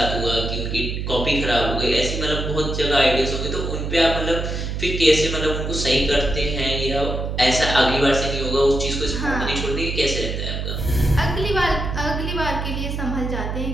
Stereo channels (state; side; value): noise; right; hum, 3 dB below the sound